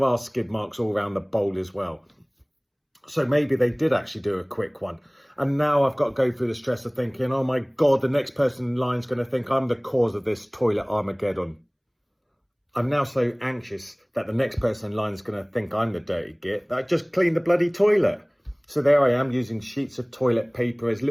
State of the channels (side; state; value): both; identical; correlation 1.00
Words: are skid marks all around the bowl as well. So maybe they did actually do a quick one. And now I've got to go through the stress of thinking, oh my God, the next person in line is going to think I'm the cause of this toilet Armageddon. I'm now so anxious that the next person in line is going to think I'm the dirty git that I just cleaned the bloody toilet. So there I am using sheets of toilet paper as